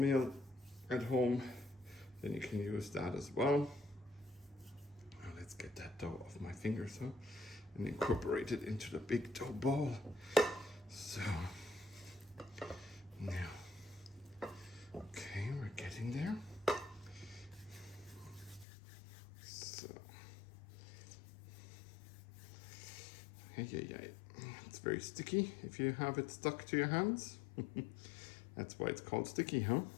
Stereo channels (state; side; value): drops out; right; at 18.7 s